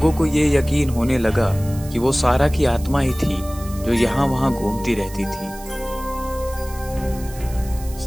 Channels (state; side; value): noise; right; hiss, 17 dB below the sound